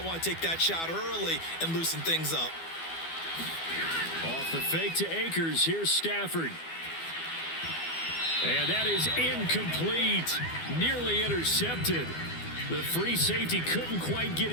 want to take that shot early and loosen things up. Off the fake to Akers. Here's Stafford. And that is incomplete. Nearly intercepted. The free safety couldn't quite get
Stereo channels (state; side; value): late; right; 12 ms